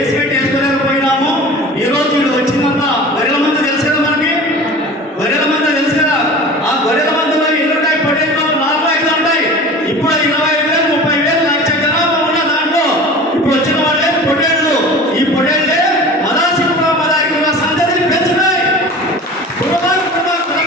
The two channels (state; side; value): normal; both; correlation 0.38